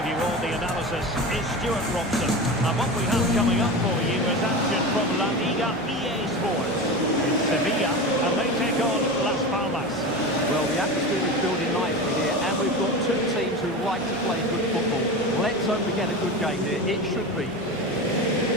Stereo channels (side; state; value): both; normal; correlation 0.27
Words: you all the analysis, is Stuart Robson. And what we have coming up for you is action from La Liga EA Sports. It's Sevilla, and they take on Las Palmas. Well, the atmosphere is building nicely here, and we've got two teams who like to play good football. Let's hope we get a good game here. It should be.